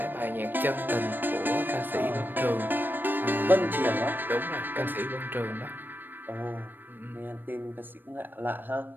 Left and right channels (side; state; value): left; late; 0.093 ms